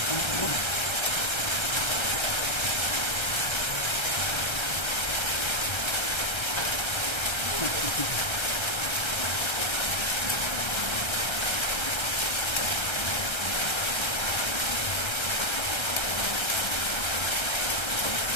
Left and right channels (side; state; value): right; late; 1.3 ms